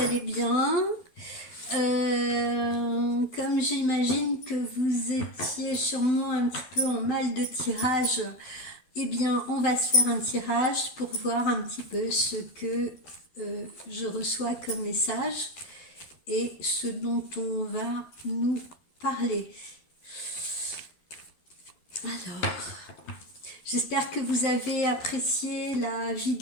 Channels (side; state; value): right; late; 12 ms